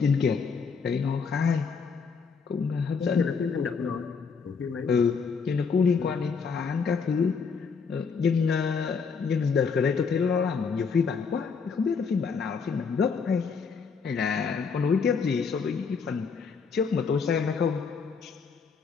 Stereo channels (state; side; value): quieter; right; 5.5 dB